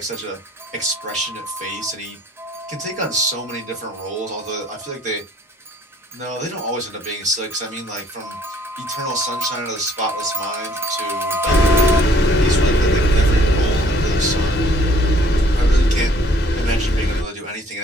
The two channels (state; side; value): normal; both; correlation 0.60